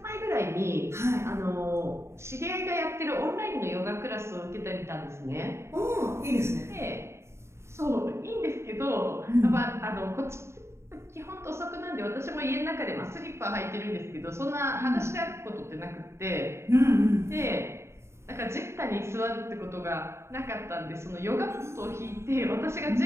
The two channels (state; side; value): late; left; 0.13 ms